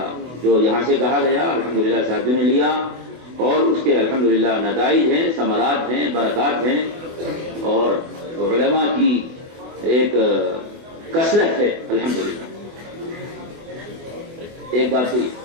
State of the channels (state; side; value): late; left; 24 ms